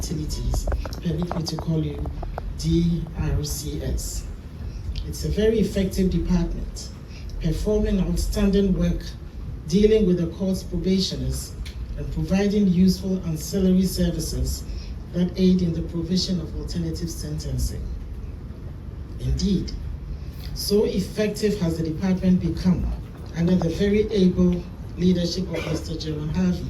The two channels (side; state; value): both; identical; correlation 1.00